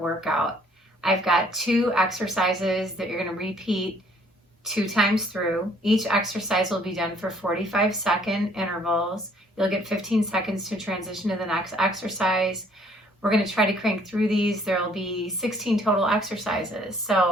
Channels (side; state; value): both; normal; correlation 0.61